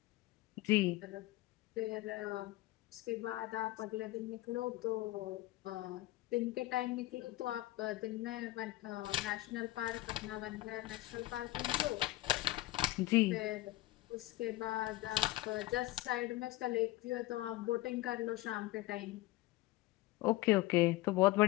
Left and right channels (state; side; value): quieter; right; 17.9 dB